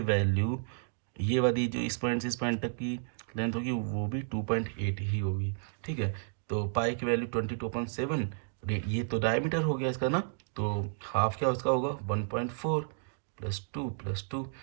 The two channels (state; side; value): silent; left; digital silence